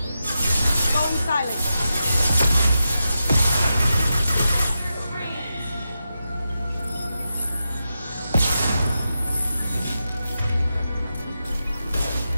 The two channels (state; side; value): inverted; both; correlation -0.89